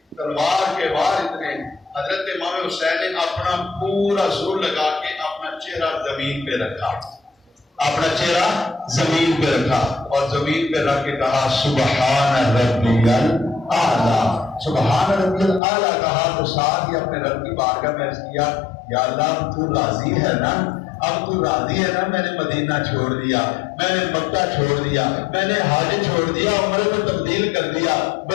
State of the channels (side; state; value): right; drops out; at 15.6 s